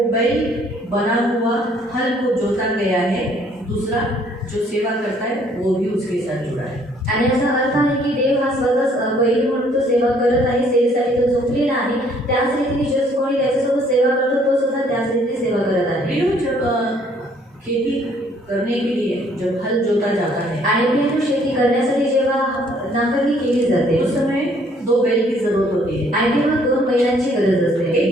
बैल बना हुआ हल को जोता गया है, दूसरा जो सेवा करता है वो भी उसके साथ जुड़ा है। आणि याचा अर्थ आहे की देव हा स्वतःच बैल म्हणून तो सेवा करत आहे, सेवेसाठी तो झोपलेला आहे, त्याच रीतीने जो कोणी त्याच्यासोबत सेवा करतो तो सुद्धा त्याच रीतीने सेवा करत आहे। प्रियो, जब खेती करने के लिए जब हल जोता जाता है आणि प्रियो, शेती करण्यासाठी जेव्हा नांगरणी केली जाते उस समय 2 बैल की जरूरत होती है। आणि तेव्हा 2 बैलांची गरज असते।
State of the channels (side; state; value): both; normal; correlation 0.62